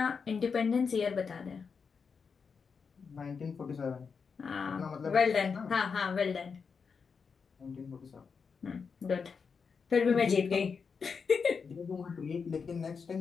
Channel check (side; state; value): right; quieter; 5.6 dB